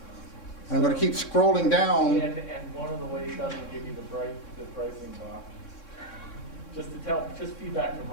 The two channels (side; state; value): right; late; 3.6 ms